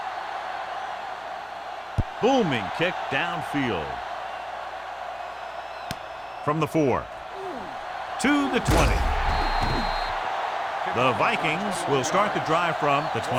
Booming kick downfield. From the 4 to the 20. The Vikings will start the drive from the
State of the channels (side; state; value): both; identical; correlation 1.00